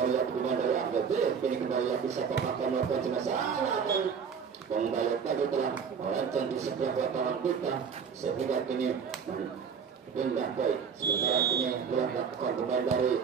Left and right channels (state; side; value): quieter; left; 6.6 dB